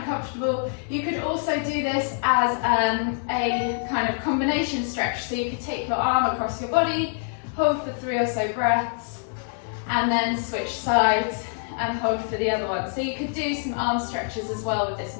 You could also do this as a kind of combination stretch. So you could take your arm across your body, hold for 3 or so breaths, and then switch sides and hold for the other one. So you could do some arm stretches as well with this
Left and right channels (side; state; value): right; silent; 62 dB below the other